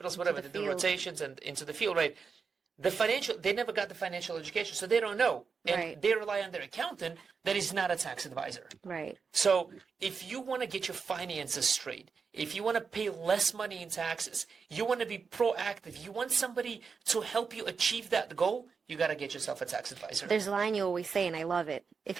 whatever. They do rotations and into the field, right? They never got the financial education, so they don't know, and they rely on their accountant that is not a tax advisor. Right. So if you want to get your finances straight, if you want to pay less money in taxes, you want to be proactive, you want somebody to help you achieve that goal, you got to get yourself a tax advisor. There's a line you always say, and I love it. If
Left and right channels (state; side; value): quieter; left; 5.4 dB